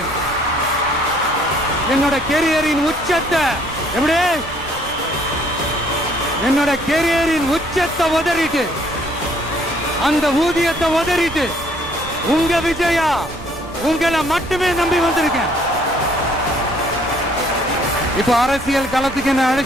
என்னோட கெரியரின் உச்சத்தை எப்படி என்னோட கெரியரின் உச்சத்தை உதறிட்டு, அந்த ஊதியத்தை உதறிட்டு உங்க விஜயா உங்களை மட்டுமே நம்பி வந்திருக்கேன். இப்ப அரசியல் களத்துக்கு என்ன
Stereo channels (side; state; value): right; noise; rumble, 16 dB below the sound